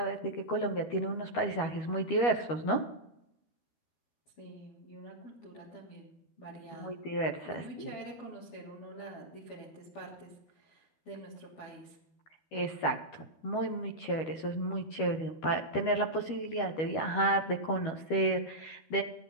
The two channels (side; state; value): right; late; 13 ms